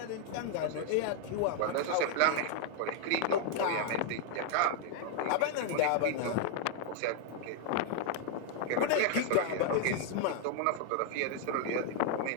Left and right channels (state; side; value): different; both; correlation 0.00